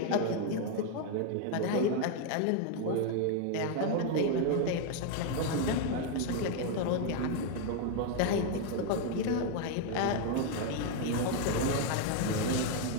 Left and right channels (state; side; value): different; both; correlation 0.00